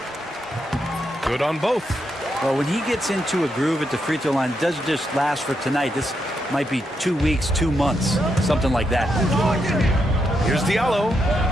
Good on both. Well, when he gets into a groove at the free throw line, it doesn't just last for tonight. This might be 2 weeks, 2 months, something like that. Here's Diallo.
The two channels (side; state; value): both; normal; correlation 0.81